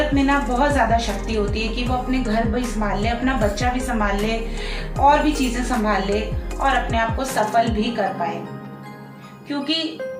में ना बहुत ज़्यादा शक्ति होती है कि वो अपने घर भी संभाल ले, अपना बच्चा भी संभाल ले, और भी चीज़ें संभाल ले और अपने आप को सफल भी कर पाए। क्योंकि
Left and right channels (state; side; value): identical; both; correlation 1.00